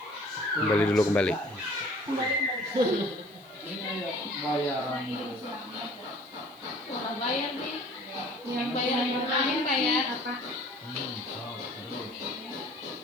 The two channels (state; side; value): noise; right; hiss, 26 dB below the sound